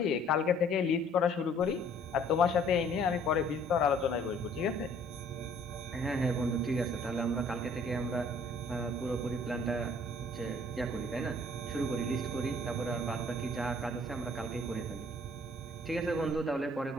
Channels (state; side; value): normal; both; correlation 0.57